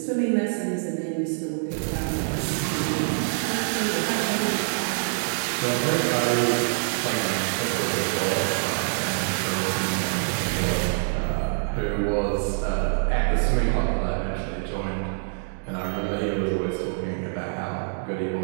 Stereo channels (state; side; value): silent; left; digital silence